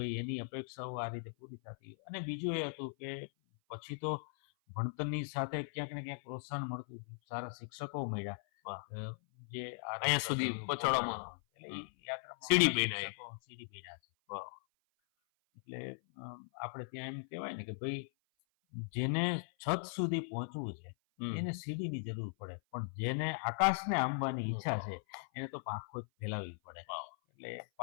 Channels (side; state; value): right; silent; 52 dB below the other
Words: એની અપેક્ષાઓ આ રીતે પૂરી થતી. અને બીજું એ હતું કે પછી તો ભણતરની સાથે ક્યાંક ને ક્યાંક પ્રોત્સાહન મળતું, સારા શિક્ષકો મળ્યા જે અહીંયા સુધી પહોંચાડવામાં, એટલે એ યાત્રામાં સીડી બન્યા છે. એટલે આપણે ત્યાં એમ કહેવાય ને કે ભાઈ જેને છત સુધી પહોંચવું છે એને સીડીની જરૂર પડે, પણ જેને આકાશને આંબવાની ઈચ્છા છે એને તો પાંખો જ ફેલાવવી પડે. એટલે